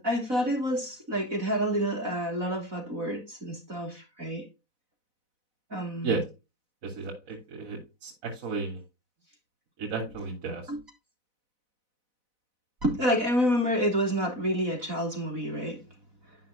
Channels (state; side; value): late; left; 4.0 ms